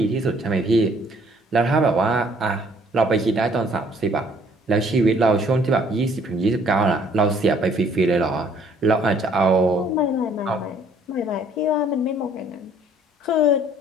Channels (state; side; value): normal; both; correlation 0.60